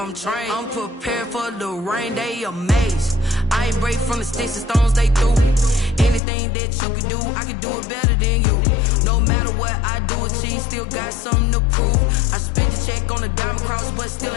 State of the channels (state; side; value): drops out; right; at 6.2 s